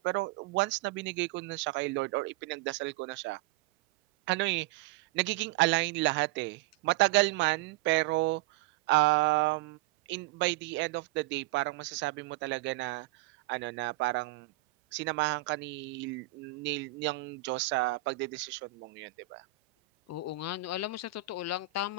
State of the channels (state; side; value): quieter; left; 13.9 dB